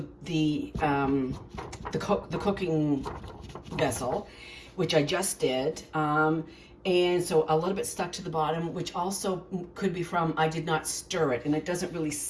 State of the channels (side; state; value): both; identical; correlation 1.00